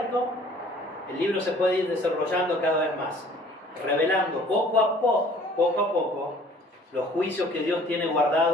el libro se puede ir desarrollando cada vez más, revelando poco a poco, los juicios que Dios tiene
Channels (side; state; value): both; normal; correlation 0.53